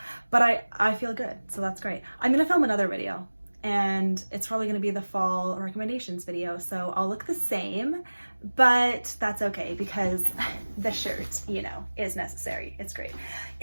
but I feel good. So that's great. I'm going to film another video, and it's probably going to be the fall recommendations video. So I'll look the same, but that's okay because the shirt, you know, is necessary. It's great.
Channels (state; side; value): inverted; both; correlation -1.00